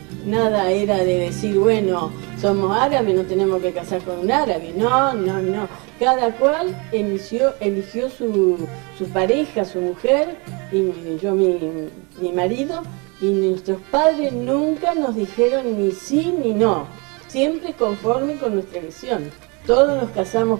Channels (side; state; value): left; quieter; 30.4 dB